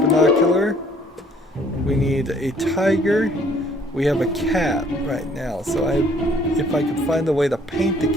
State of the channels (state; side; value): normal; both; correlation 0.60